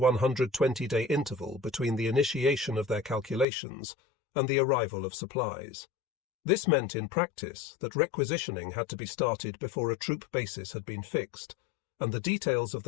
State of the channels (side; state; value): right; drops out; at 3.5 s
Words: interval between the initiation of their calculations and the arrival of supplies. This meant in practice that requisitioning had to be started before a troop basis had been fixed, and the details of